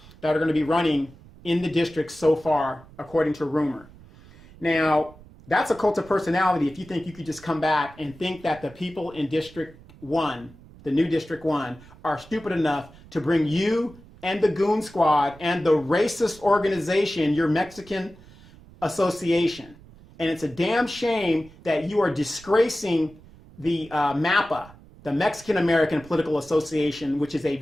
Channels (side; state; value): right; noise; rumble, 22 dB below the sound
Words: that are going to be running in the district so far, according to rumor. Now, that's a cult of personality if you think you could just come back and think that the people in District 1, the new District 1, are stupid enough to bring you and the Goon Squad and the racist organization, your Mexican association. And it's a damn shame that you are disgracing the MAPA, the Mexican American Political Association, which is a